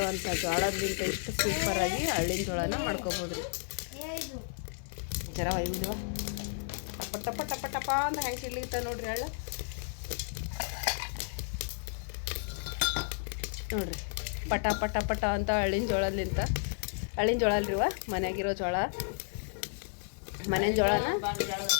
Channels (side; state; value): right; silent; 56 dB below the other